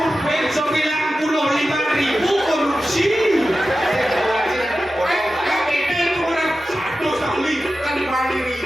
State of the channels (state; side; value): normal; both; correlation 0.93